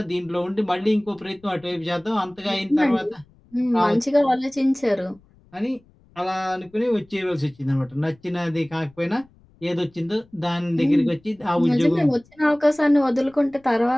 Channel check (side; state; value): left; noise; rumble, 30 dB below the sound